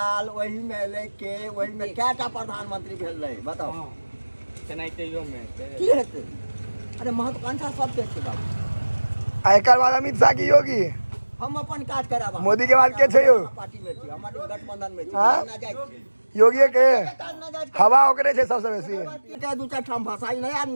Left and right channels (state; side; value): inverted; both; correlation -1.00